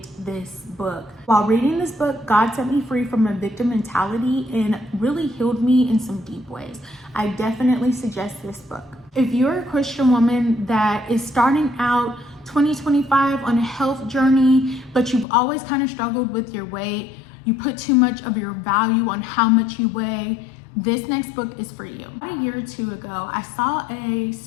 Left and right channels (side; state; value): right; drops out; at 15.2 s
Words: this book. While reading this book, God set me free from a victim mentality and really healed me in some deep ways. I definitely suggest this book. If you're a Christian woman that is starting out 2025 on a health journey, but you've always kind of struggled with your weight, you put too much of your value on how much you weigh, this next book is for you. About a year or two ago, I saw a